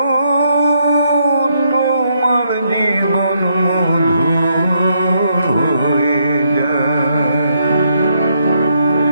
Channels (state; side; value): inverted; both; correlation -0.76